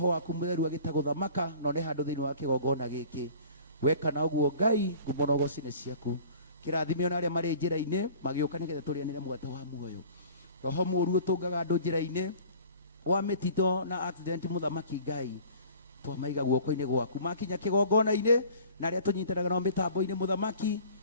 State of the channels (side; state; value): both; inverted; correlation -0.47